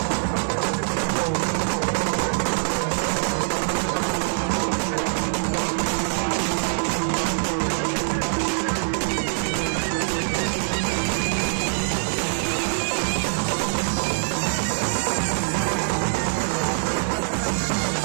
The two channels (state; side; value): silent; left; digital silence